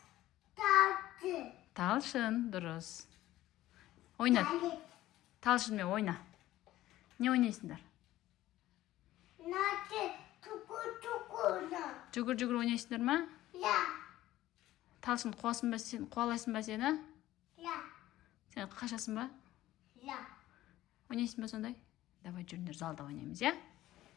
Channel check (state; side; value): quieter; right; 15.1 dB